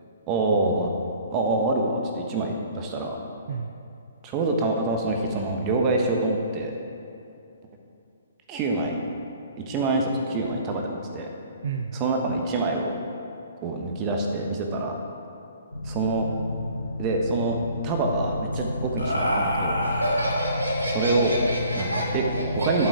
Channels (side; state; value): both; inverted; correlation -0.51